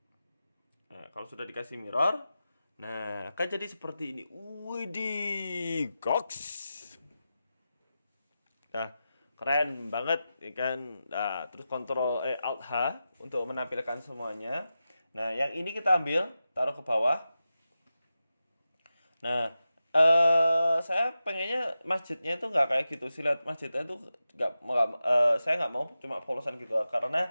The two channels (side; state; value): both; inverted; correlation -0.92